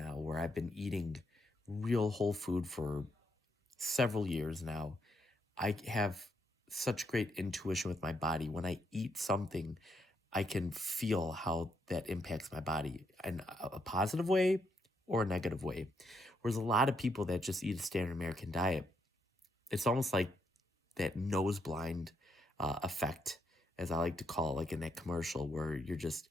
where I've been eating real whole food for several years now. I have such great intuition with my body. When I eat something, I can feel how that impacts my body in a positive way or a negative way. Whereas a lot of people that just eat a standard American diet, it's almost like that nose blind effect, as I like to call it, like in that commercial, where you're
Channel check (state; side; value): normal; both; correlation 0.77